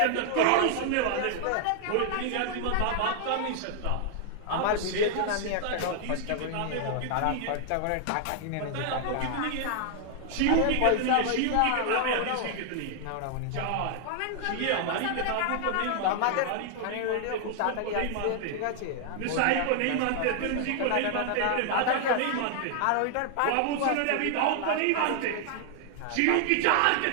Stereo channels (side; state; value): both; different; correlation 0.00